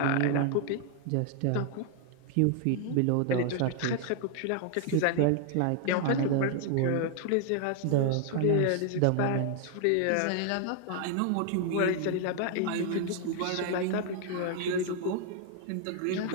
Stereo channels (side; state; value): both; different; correlation 0.00